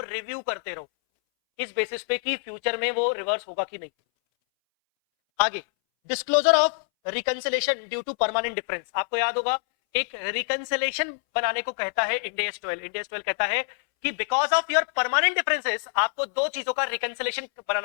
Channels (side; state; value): right; silent; 61 dB below the other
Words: रिव्यू करते रहो इस बेसिस पे कि फ्यूचर में वो रिवर्स होगा कि नहीं। आगे, disclosure of reconciliation due to permanent difference, आपको याद होगा एक रिकंसिलेशन बनाने को कहता है इंड AS 12। इंड AS 12 कहता है कि because of your permanent differences आपको दो चीजों का रिकंसिलेशन